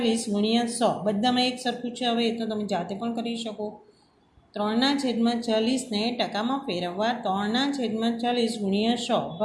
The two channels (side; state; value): both; identical; correlation 1.00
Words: ગુણ્યા 100 બધામાં એક સરખું છે. હવે એ તો તમે જાતે પણ કરી શકો. 3/40ને ટકામાં ફેરવવા 3/40 ગુણ્યા 100